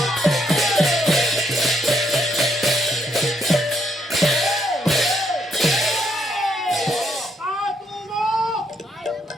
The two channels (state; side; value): normal; both; correlation 0.74